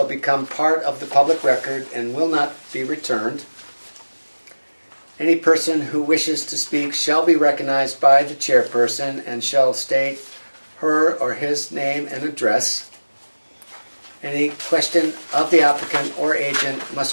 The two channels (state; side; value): inverted; both; correlation -1.00